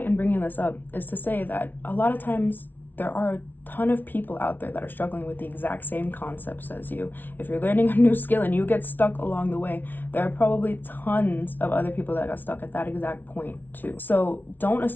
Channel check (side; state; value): right; late; 0.088 ms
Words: in bringing this up is to say that a lot of times there are a ton of people out there that are struggling with the exact same concepts as you. If you're learning a new skill and you get stuck along the way, there are probably tons of other people that got stuck at that exact point too. So don't